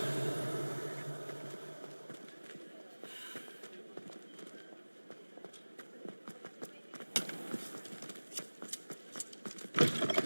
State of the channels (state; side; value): inverted; both; correlation -1.00